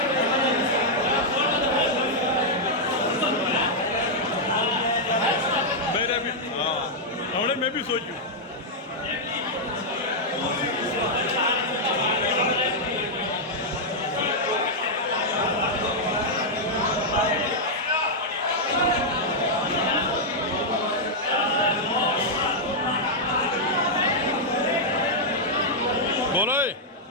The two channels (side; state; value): both; normal; correlation -0.05